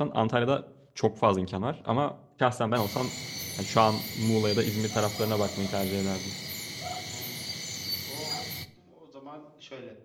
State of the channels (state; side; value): identical; both; correlation 1.00